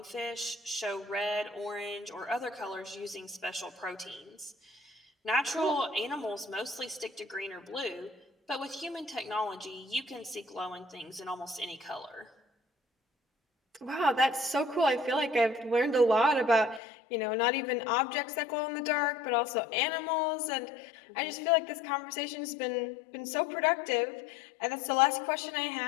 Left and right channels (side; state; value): right; drops out; at 16.8 s